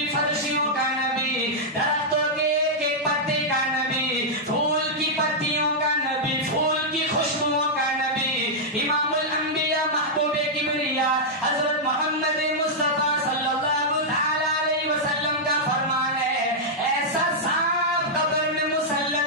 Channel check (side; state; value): both; normal; correlation -0.07